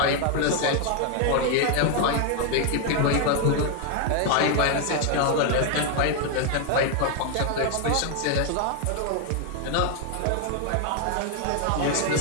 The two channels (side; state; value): both; different; correlation 0.00